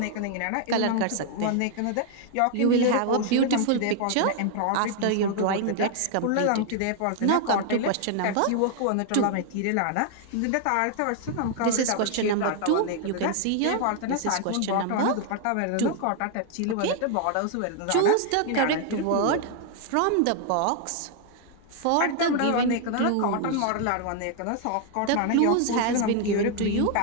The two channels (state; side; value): different; both; correlation 0.00